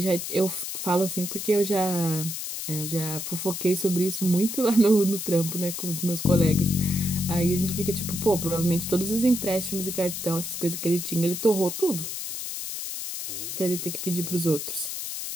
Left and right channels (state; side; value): noise; left; hiss, 5 dB below the sound